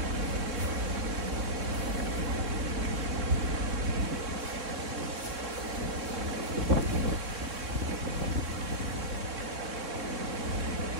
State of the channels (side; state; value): left; late; 3.6 ms